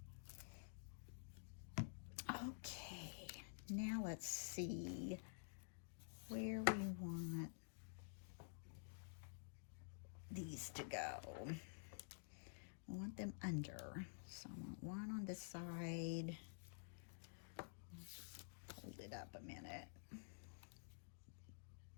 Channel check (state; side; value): silent; right; digital silence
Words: Okay, now let's see where we want these to go. I want them under, so I want one on this side. Let's just hold it up a minute.